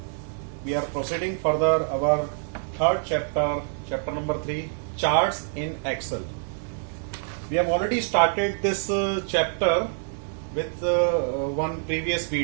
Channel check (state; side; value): silent; left; 55 dB below the other